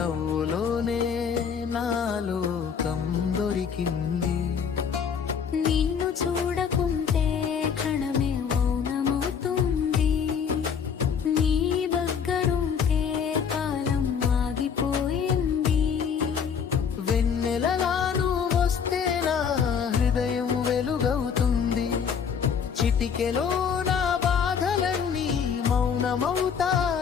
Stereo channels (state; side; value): quieter; right; 6.9 dB